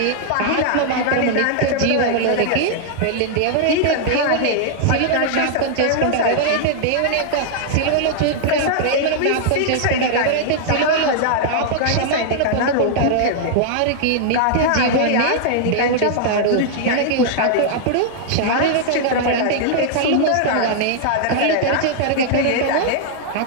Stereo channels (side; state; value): both; different; correlation -0.01